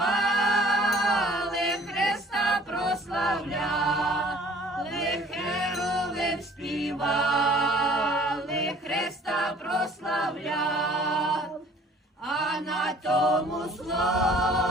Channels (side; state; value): both; normal; correlation 0.53